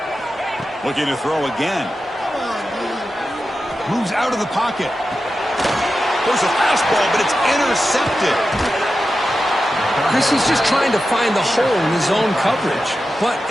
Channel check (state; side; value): normal; both; correlation 0.91